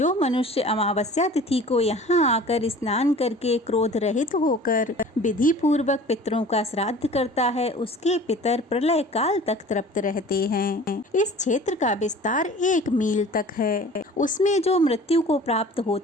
मनुष्य अमावस्या तिथि को यहाँ आकर स्नान करके क्रोध रहित होकर विधि पूर्वक पितरों का श्राद्ध करता है उसके पितर प्रलय काल तक तृप्त रहते हैं। इस क्षेत्र का विस्तार 1 मील तक है। उसमें जो मृत्यु को प्राप्त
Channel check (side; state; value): both; normal; correlation 0.44